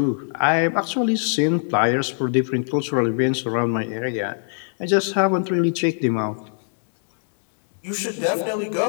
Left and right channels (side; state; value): right; silent; 64 dB below the other